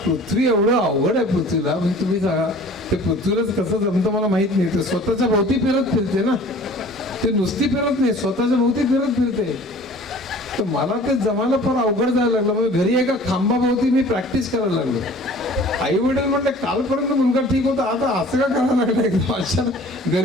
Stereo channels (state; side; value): normal; both; correlation 0.47